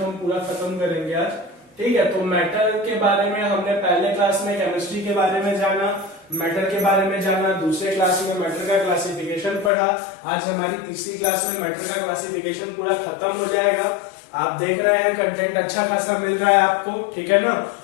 हम पूरा खत्म करेंगे आज। ठीक है, तो मैटर के बारे में हमने पहले क्लास में केमिस्ट्री के बारे में जाना, मैटर के बारे में जाना, दूसरे क्लास में मैटर का क्लासिफिकेशन पढ़ा। आज हमारी तीसरी क्लास में मैटर का क्लासिफिकेशन पूरा खत्म हो जाएगा। आप देख रहे हैं कंटेंट अच्छा खासा मिल रहा है आपको, ठीक है ना।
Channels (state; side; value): drops out; right; at 9.7 s